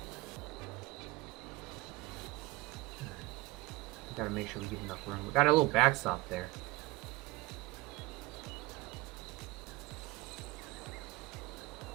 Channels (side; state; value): left; quieter; 20.6 dB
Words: Gotta make sure we give enough room. We got a little backstop there.